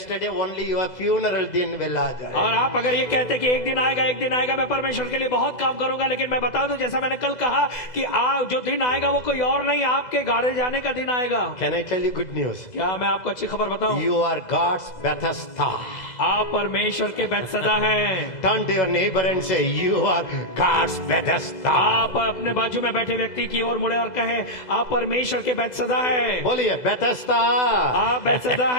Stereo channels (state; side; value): late; right; 2.0 ms